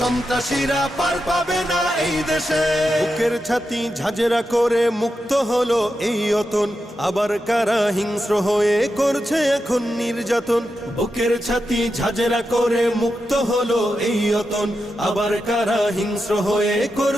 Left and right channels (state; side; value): normal; both; correlation 0.88